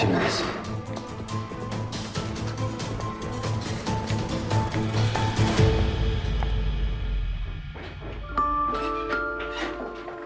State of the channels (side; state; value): both; identical; correlation 1.00